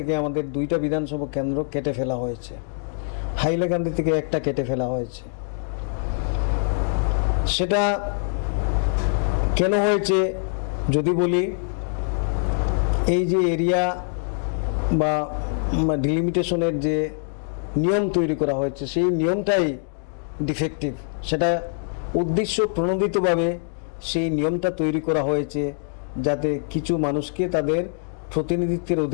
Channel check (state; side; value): silent; right; digital silence